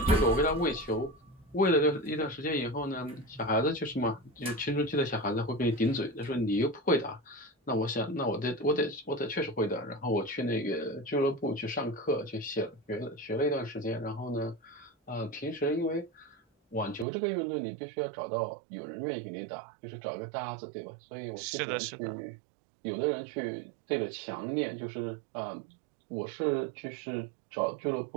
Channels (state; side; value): drops out; left; at 17.1 s